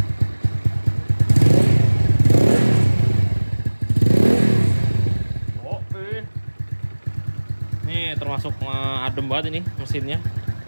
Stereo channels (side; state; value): both; inverted; correlation -1.00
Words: Oke. Nih termasuk adem banget ini mesinnya.